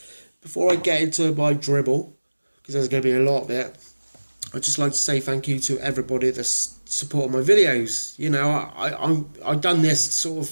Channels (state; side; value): inverted; both; correlation -1.00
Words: before I get into my dribble, because there's going to be a lot of it, I'd just like to say thank you to everybody that's supported my videos. You know, I've done this sort